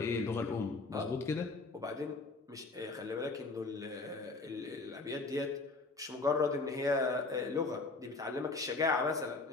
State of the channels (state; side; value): quieter; right; 3.6 dB